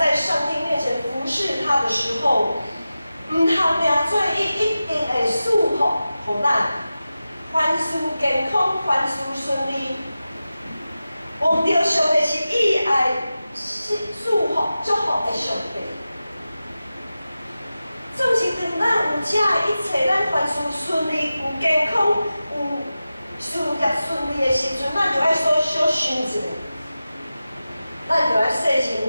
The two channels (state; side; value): inverted; both; correlation -0.94